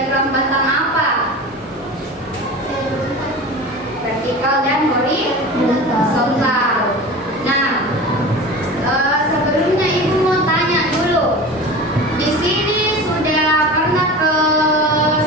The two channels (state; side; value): normal; both; correlation 0.33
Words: batang apa? Vertikal dan horizontal. Nah, sebelumnya Ibu mau tanya dulu. Di sini sudah pernah ke